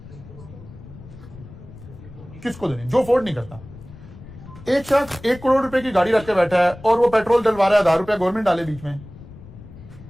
किसको देनी? जो अफोर्ड नहीं करता। एक शख्स 1 करोड़ रुपए की गाड़ी रख के बैठा है और वो पेट्रोल डलवा रहा है, 1000 रुपया गवर्नमेंट डाले बीच में,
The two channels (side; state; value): left; noise; rumble, 17 dB below the sound